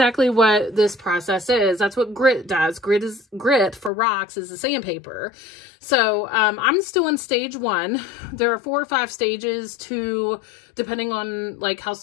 what this process is. That's what grit does. Grit for rocks is the sandpaper. So I'm still in stage 1. There are 4 or 5 stages to, depending on like how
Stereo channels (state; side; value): drops out; right; at 3.9 s